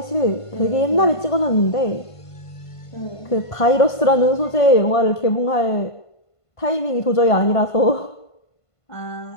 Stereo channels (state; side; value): late; right; 1.5 ms